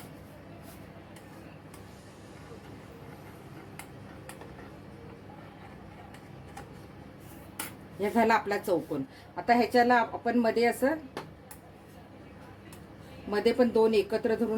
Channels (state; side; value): identical; both; correlation 1.00